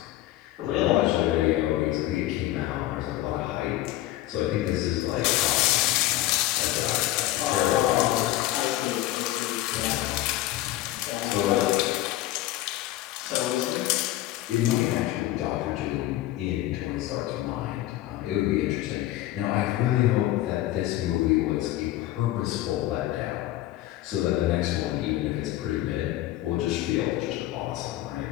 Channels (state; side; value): quieter; right; 15.2 dB